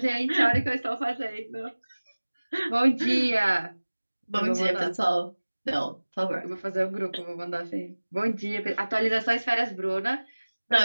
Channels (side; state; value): both; inverted; correlation -1.00